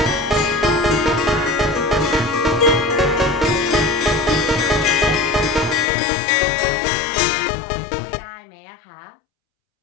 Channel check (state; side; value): drops out; right; at 5.9 s